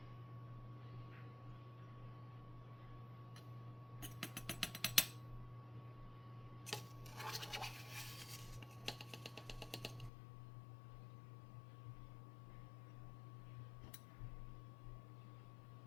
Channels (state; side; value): drops out; right; at 10.1 s